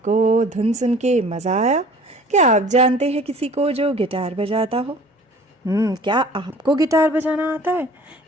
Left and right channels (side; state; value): both; normal; correlation 0.48